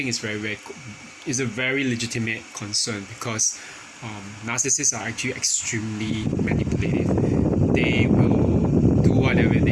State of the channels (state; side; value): identical; both; correlation 1.00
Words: it's it's a very legitimate concern because narcissists are actually extremely manipulative. They will do whatever